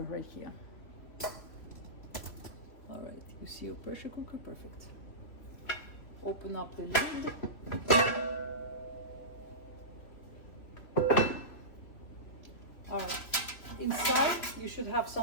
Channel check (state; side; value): late; right; 3.1 ms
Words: here. All right, you see your pressure cooker? Perfect. Open up the lid. All right, inside you should have